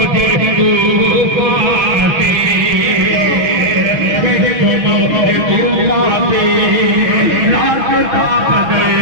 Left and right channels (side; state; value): left; late; 6.2 ms